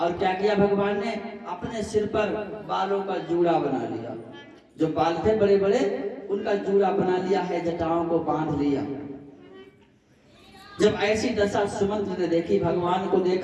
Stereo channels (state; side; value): identical; both; correlation 1.00